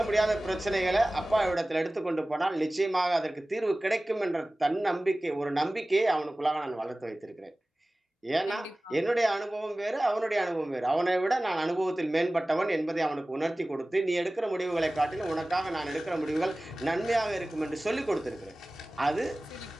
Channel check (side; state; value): both; normal; correlation 0.98